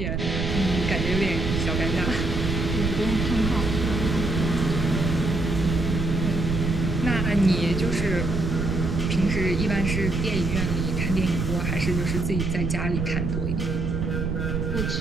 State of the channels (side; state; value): right; noise; rumble, 1 dB below the sound